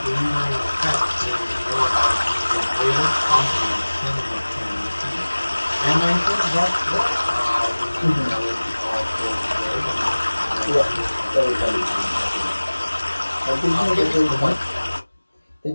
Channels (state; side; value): inverted; both; correlation -1.00